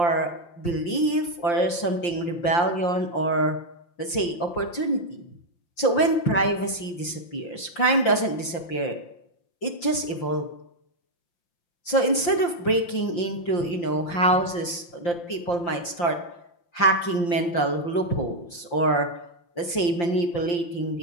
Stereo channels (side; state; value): right; late; 5.8 ms